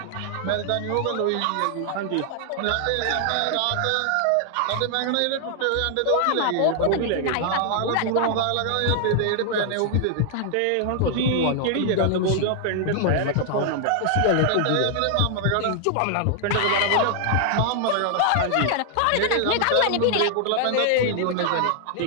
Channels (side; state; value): both; different; correlation 0.00